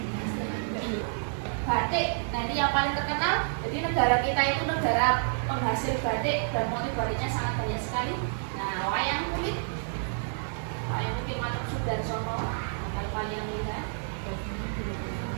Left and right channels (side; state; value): left; silent; digital silence